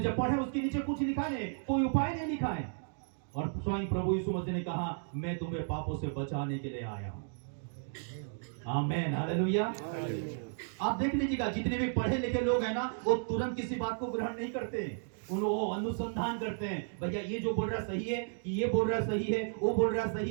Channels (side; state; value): left; silent; digital silence